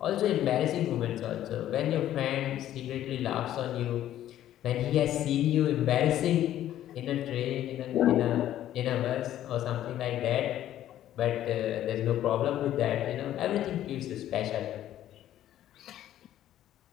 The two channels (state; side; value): quieter; right; 12.3 dB